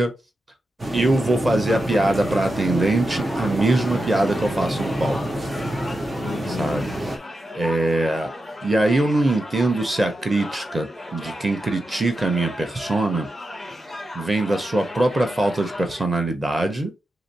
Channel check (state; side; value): normal; both; correlation 0.89